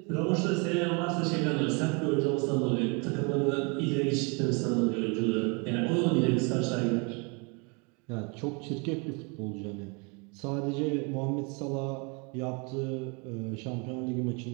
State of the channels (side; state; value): left; quieter; 32.2 dB